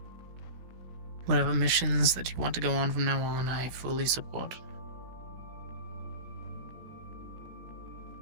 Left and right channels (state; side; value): late; left; 16 ms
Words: Whatever missions that you want to go on from now on, I fully support.